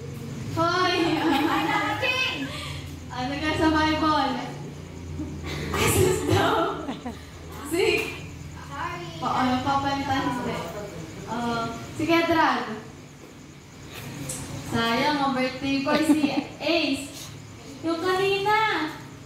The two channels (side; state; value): both; identical; correlation 1.00